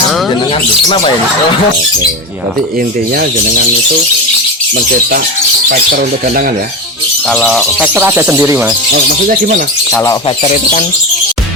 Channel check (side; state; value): both; normal; correlation 0.20